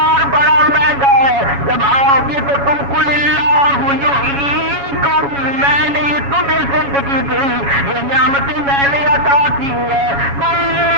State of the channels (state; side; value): late; left; 7.2 ms